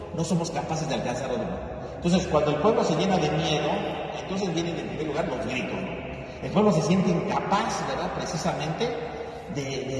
no somos capaces de alcanzar algo, ¿no? Entonces, cuando el pueblo se llena de miedo, entonces vienen en primer lugar los gritos, ¿no? El pueblo se siente incapaz, ¿verdad?, precisamente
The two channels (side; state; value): both; identical; correlation 1.00